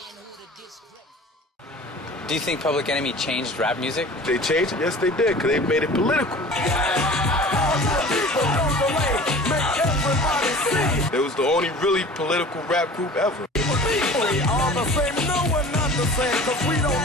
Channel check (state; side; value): normal; both; correlation 0.42